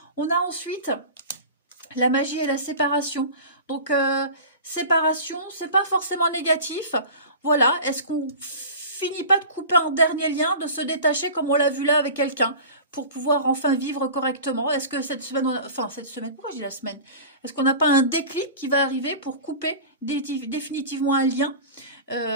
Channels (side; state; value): both; inverted; correlation -0.36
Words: On a ensuite la magie et la séparation. Donc, séparation, c'est pas forcément négatif. Voilà, est-ce qu'on finit pas de couper un dernier lien, de se détacher comme on l'a vu là avec quelqu'un, pour pouvoir enfin vivre correctement? Est-ce que cette semaine, enfin cette semaine, pourquoi je dis la semaine? Est-ce qu'on n'a pas un déclic qui va arriver pour couper définitivement un lien,